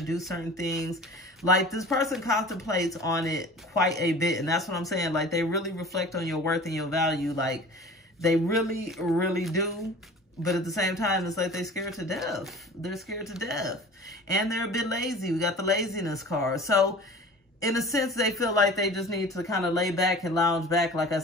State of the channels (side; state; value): both; normal; correlation 0.41